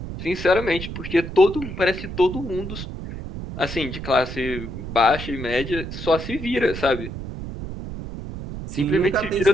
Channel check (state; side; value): noise; right; rumble, 8 dB below the sound